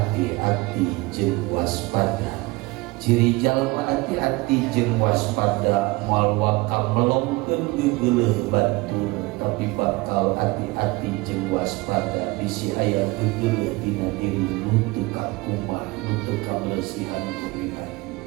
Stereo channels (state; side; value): quieter; left; 23.0 dB